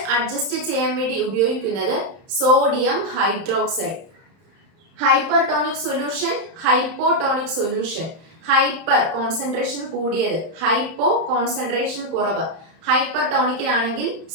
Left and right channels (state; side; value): late; left; 31 ms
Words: adjust ചെയ്യാൻ വേണ്ടി ഉപയോഗിക്കുന്നത് sodium hydroxide. Hypertonic solution, hypotonic solution. Hyper concentration കൂടിയത്, hypo concentration കുറവ്. ഹൈപ്പർടോണിക്കിനാണെങ്കിൽ